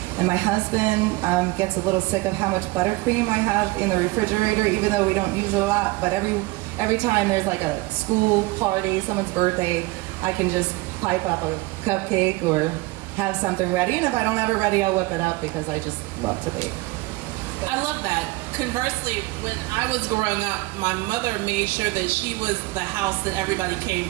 And my husband gets a little sick of how much buttercream I have in the refrigerator, even though we don't use it a lot. But every time there's like a school party, someone's birthday, I can just pipe up a cupcake or have something ready. And if I don't have it ready, I'll whip it up because I just love to bake. I love that. Conversely, when I was growing up, my mother made sure that she was the house that everybody came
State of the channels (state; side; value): quieter; left; 21.7 dB